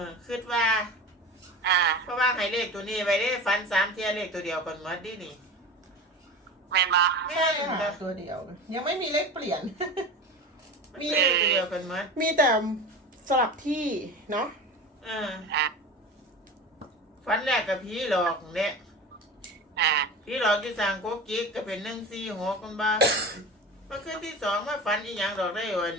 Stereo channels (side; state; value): both; normal; correlation 0.32